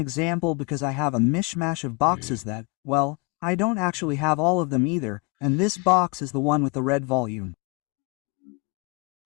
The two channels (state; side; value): quieter; right; 29.8 dB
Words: because I have a mishmash of boxes that, well, I don't actually have all of them either, and this box is the one with the red volume.